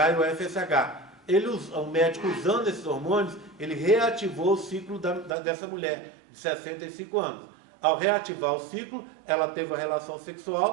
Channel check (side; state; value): left; drops out; at 5.4 s